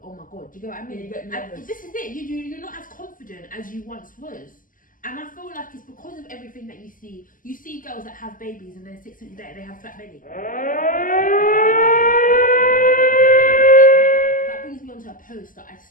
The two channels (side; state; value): right; late; 0.39 ms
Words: oh my god. Do you get what I mean? Yeah, you get nervous. And this is it. You're not as confident as you once was. And I feel like it's because of everything that you see. You see girls that have babies and then 6 weeks later they have flat belly. That brings me on to a post that I